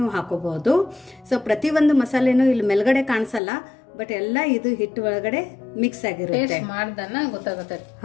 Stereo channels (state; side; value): drops out; right; at 3.4 s